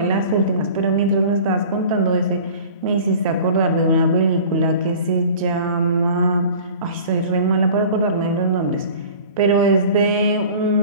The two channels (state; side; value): inverted; both; correlation -0.43